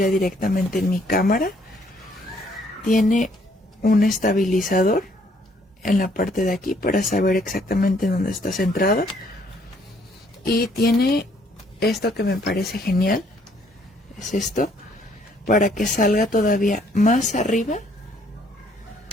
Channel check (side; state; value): both; normal; correlation 0.65